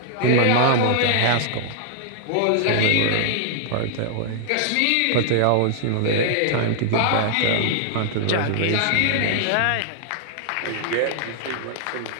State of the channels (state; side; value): different; both; correlation -0.01